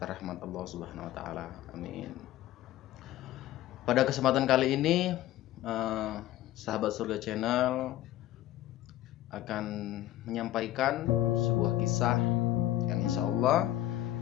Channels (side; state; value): right; quieter; 14.2 dB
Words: rahmat Allah Subhanahu wa Ta'ala. Amin. Pada kesempatan kali ini, sahabat surga channel akan menyampaikan sebuah kisah yang insya Allah